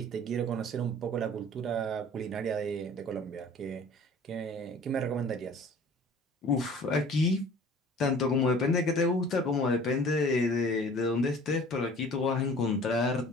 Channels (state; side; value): normal; both; correlation 0.47